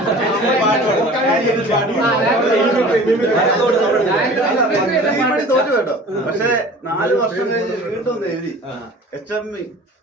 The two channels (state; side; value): normal; both; correlation 0.43